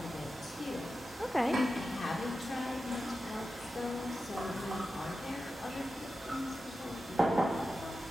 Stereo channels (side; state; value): both; normal; correlation 0.92